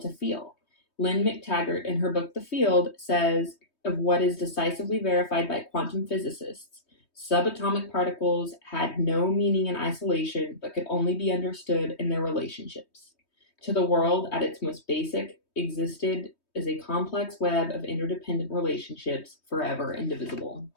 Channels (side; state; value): right; late; 3.2 ms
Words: feel. Lynne McTaggart, in her book The Field, says of what is decisively verified by quantum physicists. Subatomic particles had no meaning in isolation, but could only be understood in their relationships. To the world, at its most basic, existed as a complex web of interdependent relationships, forever indivisible.